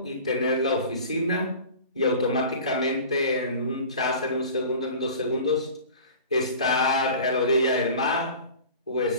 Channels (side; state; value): both; inverted; correlation -0.40